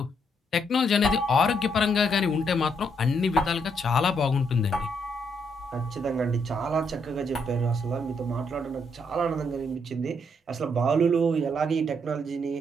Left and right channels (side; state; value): both; normal; correlation 0.74